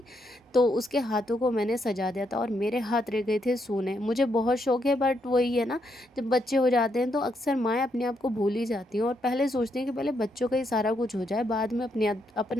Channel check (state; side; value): normal; both; correlation 0.78